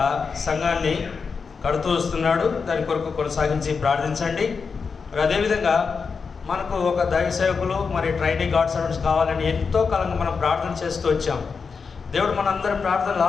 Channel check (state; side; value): quieter; right; 5.3 dB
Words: సంఘాన్ని కడుతూ వస్తున్నాడు. దాని కొరకు కొనసాగించి ప్రార్థించండి. మరి అదేవిధంగా మనకు ఒక దైవ సేవకులు మరి ట్రైనింగ్ గాడ్ సర్వెంట్స్ కావాలని ఎంతో కాలంగా మనం ప్రార్థన చేస్తూ వచ్చాం. దేవుడు మనందరి ప్రార్థనలు